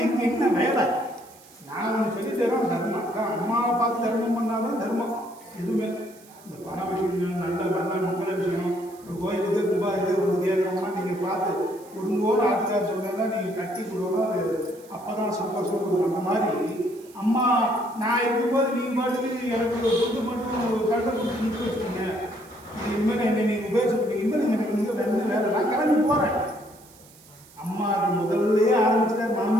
எங்கே என்ன வேலை? நான் ஒன்று சொல்லி தரோம், தர்மம் தான். அம்மாவை பார்த்து தர்மம் பண்ணாதான் தர்மம். எதுவுமே இந்த பண விஷயம், நல்ல மங்கள விஷயம், ஒரு கோயிலுக்கு கும்பா இது ஒரு கேட்குறோம்னா நீங்கள் பார்த்து கொடுங்கோன்னு ஆத்துக்கார் சொன்னா நீங்கள் கட்டி கொடுக்கணும். அது அப்போ தான் சந்தோஷம் கொடுக்கும். அந்த மாதிரி அம்மா நான் இருக்கும்போது நீங்கள் பாட்டுக்கு எனக்கு ஒரு துண்டு மட்டும் கண்டை கொடுத்து நிற்க வச்சுக்கோங்க. இது இனிமேல் என்னை நீங்கள் உபயோகிச்சுக்கோங்க. இனிமேல் எனக்கு இங்கே வந்து வேலை நான் கிளம்பி போகிறேன். அம்மாவுக்கு முதல்லையே ஆரம்பிச்சுட்டார்.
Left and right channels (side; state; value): right; noise; hiss, 24 dB below the sound